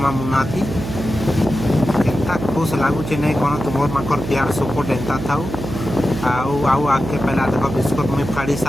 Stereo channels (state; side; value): noise; right; hum, 7 dB below the sound